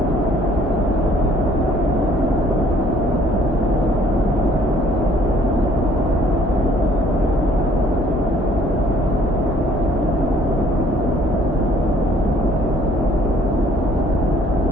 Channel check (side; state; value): both; normal; correlation 0.60